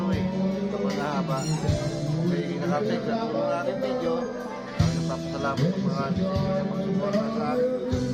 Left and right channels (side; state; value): both; identical; correlation 1.00